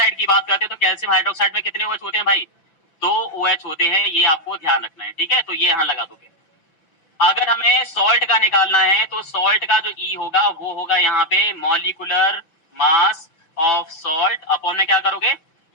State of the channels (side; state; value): right; late; 6.0 ms